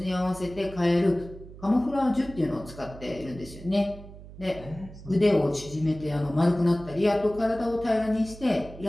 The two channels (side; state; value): right; noise; hum, 16 dB below the sound